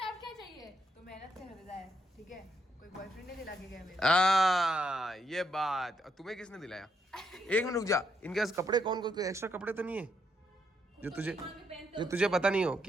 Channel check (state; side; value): normal; both; correlation 0.77